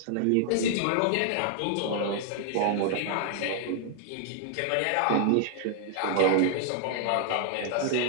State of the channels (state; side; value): different; both; correlation 0.00